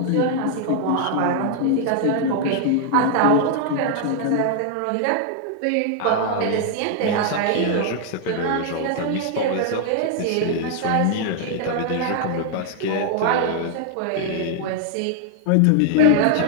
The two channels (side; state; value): both; different; correlation 0.00